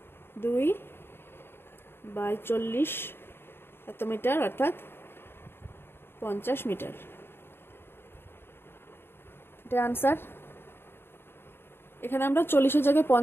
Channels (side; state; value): right; late; 0.11 ms